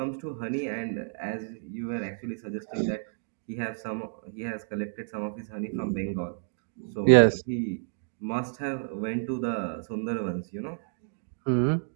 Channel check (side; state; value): left; silent; digital silence